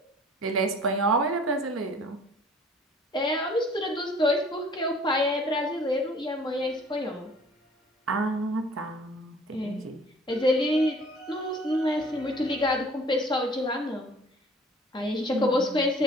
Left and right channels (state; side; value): normal; both; correlation 0.52